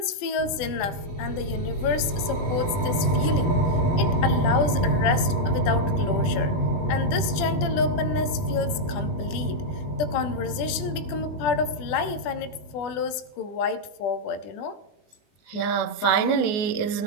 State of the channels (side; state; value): right; late; 20 ms